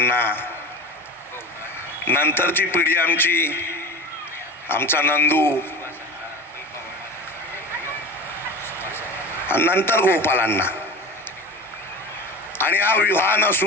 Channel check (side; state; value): both; normal; correlation 0.32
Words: नंतरची पिढी आमची, आमचा नंदू, आणि नंतर गोपालांना. आणि हा विवाह